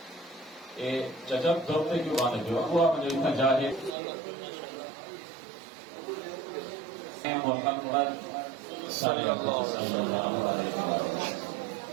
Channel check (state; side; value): drops out; left; at 4.0 s